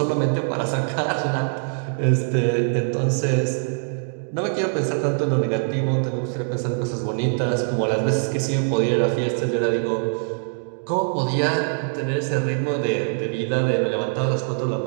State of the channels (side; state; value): left; silent; digital silence